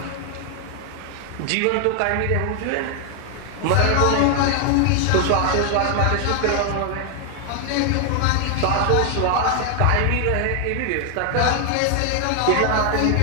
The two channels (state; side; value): different; both; correlation 0.00